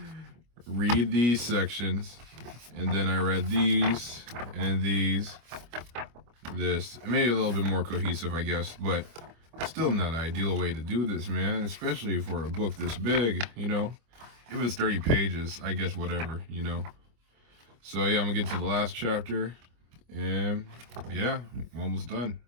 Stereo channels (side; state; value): left; late; 25 ms